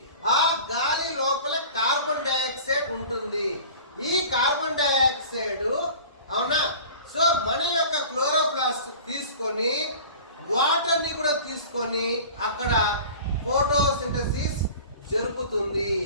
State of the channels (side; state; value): both; inverted; correlation -0.41